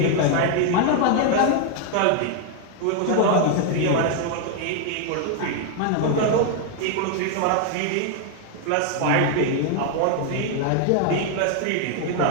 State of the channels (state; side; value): different; both; correlation 0.00